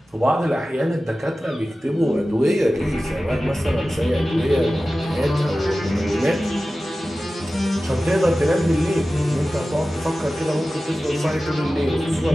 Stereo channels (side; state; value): both; normal; correlation 0.95